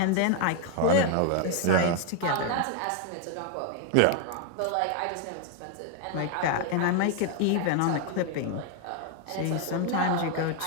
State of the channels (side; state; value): both; different; correlation 0.00